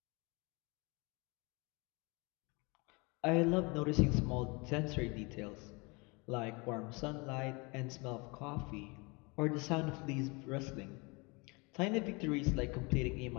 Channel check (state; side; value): quieter; right; 28.5 dB